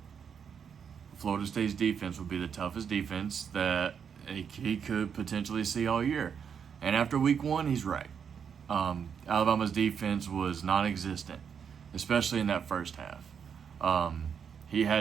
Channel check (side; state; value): left; quieter; 7.2 dB